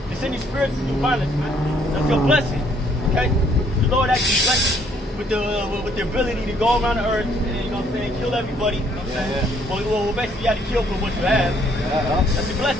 It's in your spirits to do violence, man. That's your blessing. Okay? The Lord actually blessed you with the ability to go around the earth and, you know what I'm saying, kill everybody. You know what I'm saying? Yeah. Well, basically you have to kill for what you have. Yeah. That's your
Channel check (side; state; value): both; normal; correlation 0.65